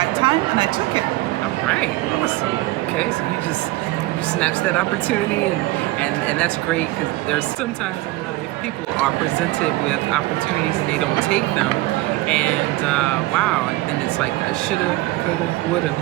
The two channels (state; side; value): quieter; left; 19.0 dB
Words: time, and I took it. All right, awesome. Okay, so you snatched that opportunity, and that's great, because there's sometimes in life people are presented with opportunities and they don't take them, and wow, and then it's like I shoulda, coulda, woulda